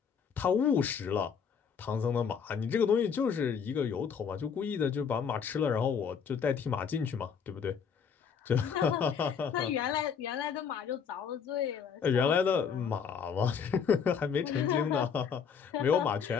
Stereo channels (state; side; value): quieter; right; 6.8 dB